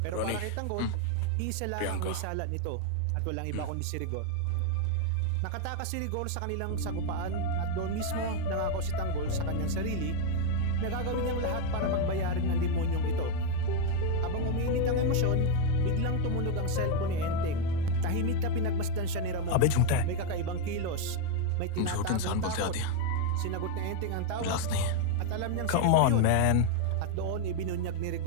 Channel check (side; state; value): both; different; correlation 0.01